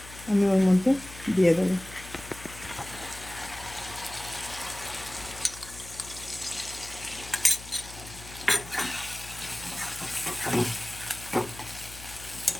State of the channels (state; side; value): noise; left; hum, 15 dB below the sound